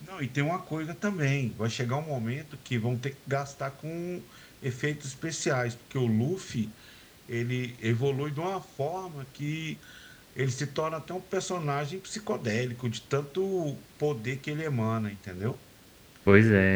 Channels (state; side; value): identical; both; correlation 1.00